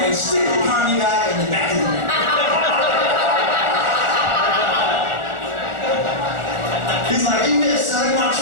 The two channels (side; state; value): left; late; 1.4 ms